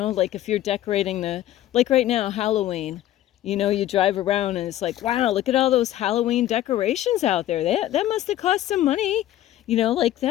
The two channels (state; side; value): quieter; right; 13.4 dB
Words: like if you're decorating like right now, Halloween, you drive around and it's like, wow, look at all those Halloween decorations out there. That must have cost some money. Like